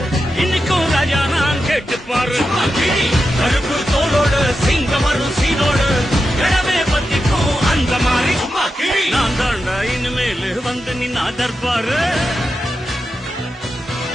இன்னைக்கும் ராஜா நான் கேட்டு பாரு கருப்பு தோளோடு சிங்கம் வரும் சீனோடு இடமே பத்திக்கும் அந்த மாதிரி நான் தாண்டா இனிமேல் வந்து நின்னா தற்பாரு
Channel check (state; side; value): normal; both; correlation 0.89